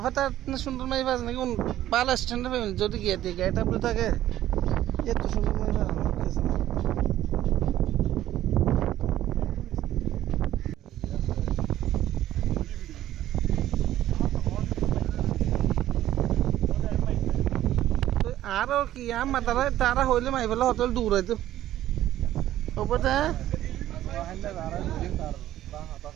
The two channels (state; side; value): quieter; left; 13.2 dB